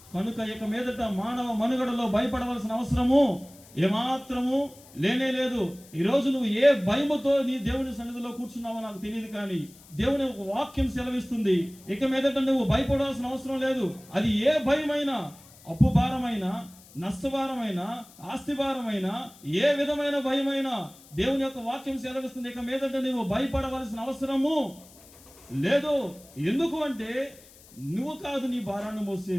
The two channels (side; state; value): left; noise; hiss, 23 dB below the sound